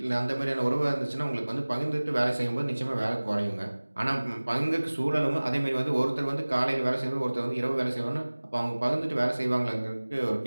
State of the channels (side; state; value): both; inverted; correlation -1.00